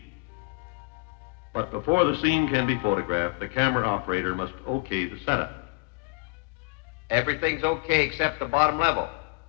But before the scene can be photographed, the camera operator must okay the setup. Everything's okay except the bottom level.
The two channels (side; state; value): right; quieter; 31.3 dB